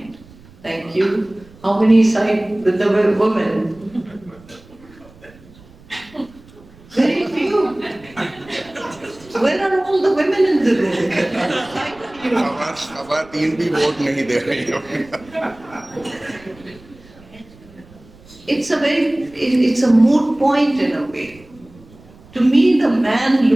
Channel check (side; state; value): right; noise; rumble, 24 dB below the sound